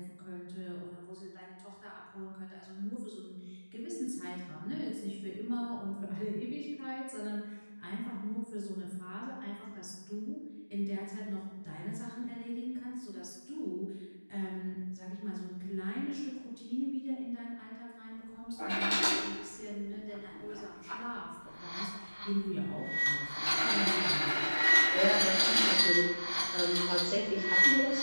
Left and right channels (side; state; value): both; inverted; correlation -1.00